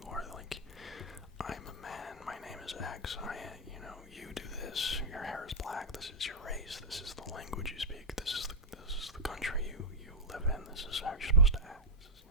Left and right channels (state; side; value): normal; both; correlation -0.06